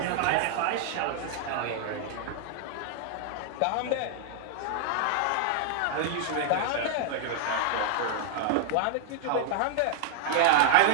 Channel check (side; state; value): both; different; correlation -0.01